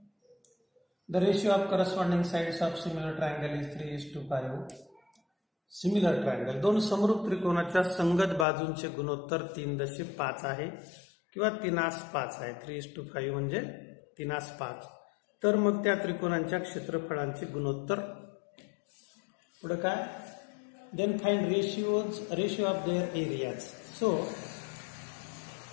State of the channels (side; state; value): right; drops out; at 8.5 s